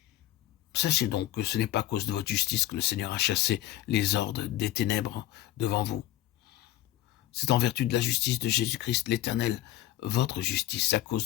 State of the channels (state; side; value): quieter; right; 14.2 dB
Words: Sachez donc que ce n'est pas à cause de votre justice que le Seigneur a chassé les hordes des ténèbres devant vous. C'est en vertu de la justice de Jésus-Christ l'Éternel, votre justice, à